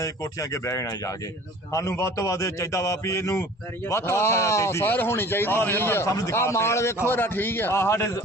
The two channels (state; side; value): normal; both; correlation 0.46